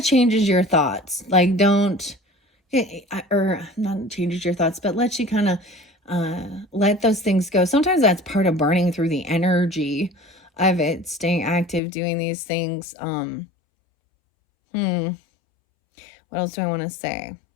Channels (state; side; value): drops out; right; at 11.8 s